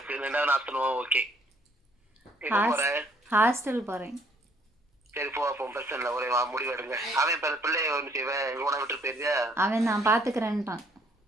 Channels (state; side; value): normal; both; correlation 0.64